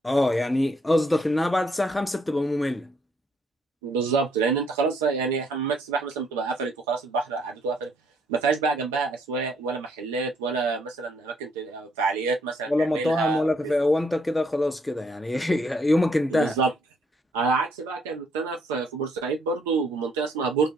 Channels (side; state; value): both; normal; correlation 0.69